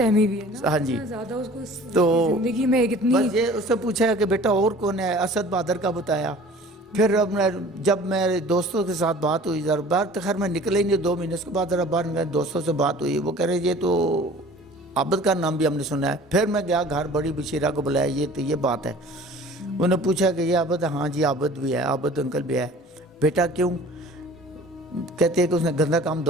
بھی ہے نا. ہاں جی, زیادہ اس کو تو زندگی میں کتنی. بس یہ اس سے پوچھا کہ بیٹا اور کون ہے, اسد بہادر کا بتایا. پھر جب میرے دوستوں کے ساتھ بات ہوئی, ذرا باہر تو خیر میں نکلے ہی نہیں 2 مہینے, اس کے بعد ذرا باہر میرے دوستوں سے بات ہوئی, وہ کہہ رہے یہ تو عابد کا نام بھی ہم نے سنا ہے. پھر میں گیا گھر, بڑی بشیرہ کو بلایا, یہ بات ہے. انہوں نے پوچھا کہ یہ عابد ہے؟ ہاں جی عابد بھی ہے, عابد انکل بھی ہے. بیٹا کیوں؟ کہتے ہیں کہ اس نے گندا کام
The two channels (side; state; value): both; normal; correlation 0.46